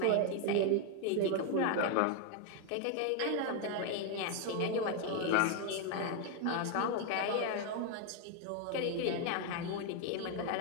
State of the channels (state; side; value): different; both; correlation 0.01